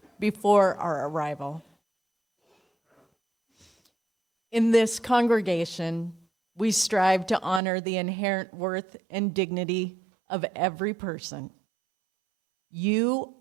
before our arrival. In this congregation, we strive to honor the inherent worth and dignity of every person. You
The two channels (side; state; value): left; drops out; at 7.6 s